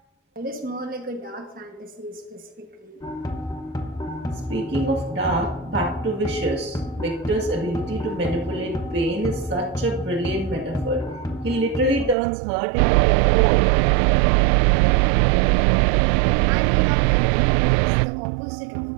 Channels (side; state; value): left; drops out; at 12.2 s